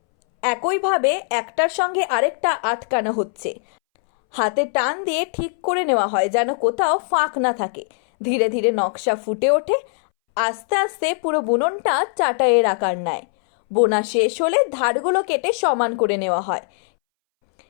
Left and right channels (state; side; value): silent; right; 64 dB below the other